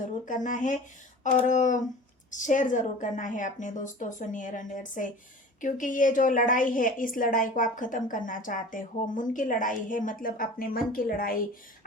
करना है, और शेयर ज़रूर करना है अपने दोस्तों से, नियर एंड डियर से, क्योंकि ये जो लड़ाई है इस लड़ाई को आप ख़त्म करना चाहते हो। मन की लड़ाई है, मतलब अपने मन की लड़ाई,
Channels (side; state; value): both; normal; correlation 0.40